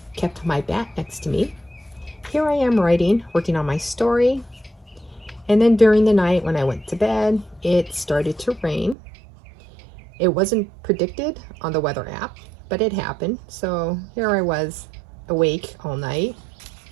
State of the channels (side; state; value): left; drops out; at 9.0 s